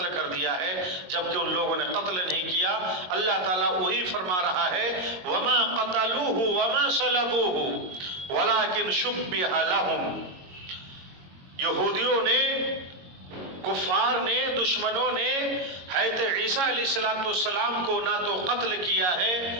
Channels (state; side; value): late; left; 22 ms